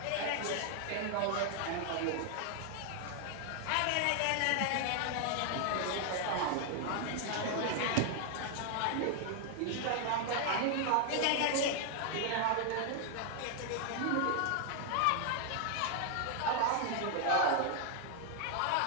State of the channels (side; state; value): both; different; correlation 0.00